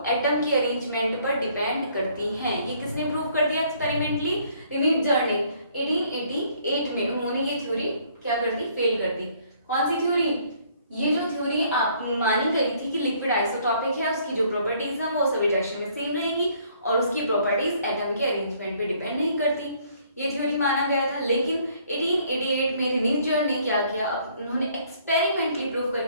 एटम की अरेंजमेंट पर डिपेंड करती हैं। ये किसने प्रूव कर दिया एक्सपेरिमेंटली? रिनीट जर्निंग 1888 में उन्होंने ये थ्योरी क्या कर दी? फेल कर दी। कौन सी थ्योरी? ये जो थ्योरी आप मानी गई थी कि लिक्विड आइसोटॉपिक है, उसकी जो प्रॉपर्टीज हैं वो सभी डायरेक्शन में सेम रहेंगी और उसकी प्रॉपर्टीज एटम के अरेंजमेंट पे डिपेंड नहीं करती, ये थ्योरी माना गया था। लेकिन 1888 में रिनीजर ने क्या किया? उन्होंने एक्सपेरिमेंटली प्रूव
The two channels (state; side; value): inverted; both; correlation -0.63